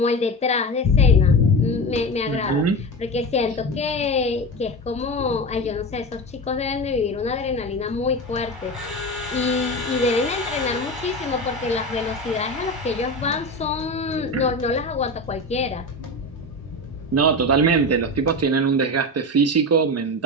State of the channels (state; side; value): normal; both; correlation 0.24